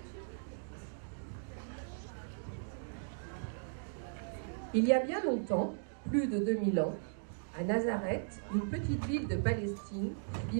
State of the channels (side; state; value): left; silent; digital silence